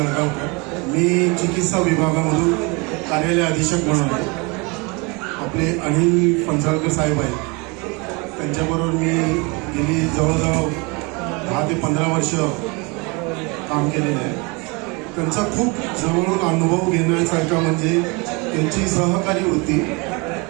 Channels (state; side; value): quieter; left; 28.7 dB